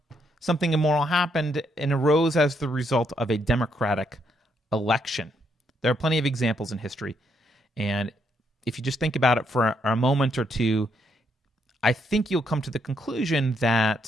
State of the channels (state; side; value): normal; both; correlation 0.75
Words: immoral happened and arose as the result of a democratic election. There are plenty of examples in history. And if you just think about it for a moment or two, I think you'll come to the conclusion